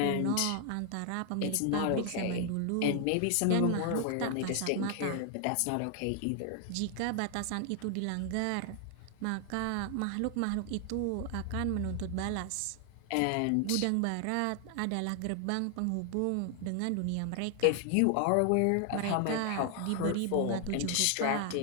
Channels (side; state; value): both; different; correlation 0.00